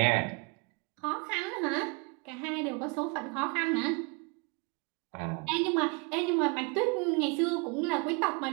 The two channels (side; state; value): left; quieter; 31.4 dB